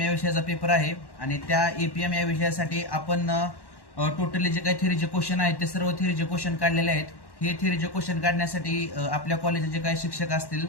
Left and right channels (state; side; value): late; right; 1.1 ms